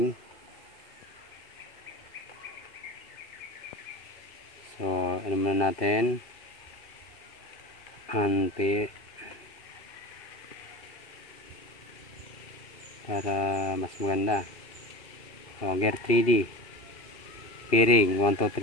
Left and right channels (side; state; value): right; late; 2.7 ms